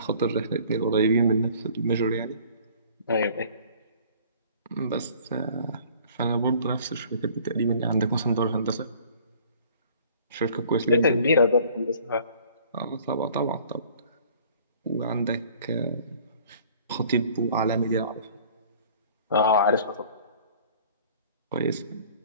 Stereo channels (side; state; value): both; inverted; correlation -0.52